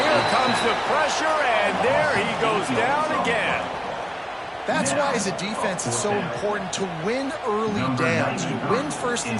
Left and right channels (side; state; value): both; identical; correlation 1.00